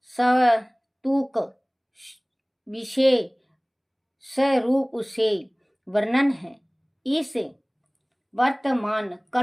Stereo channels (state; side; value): identical; both; correlation 1.00